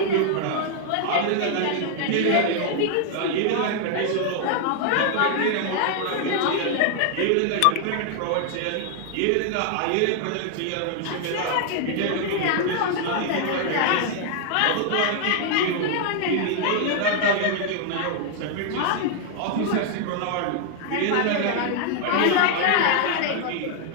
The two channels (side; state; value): both; different; correlation 0.00